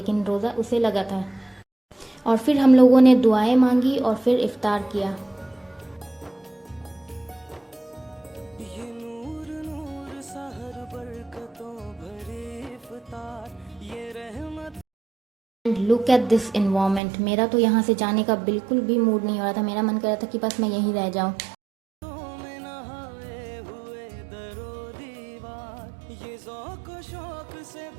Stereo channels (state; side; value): drops out; left; at 17.0 s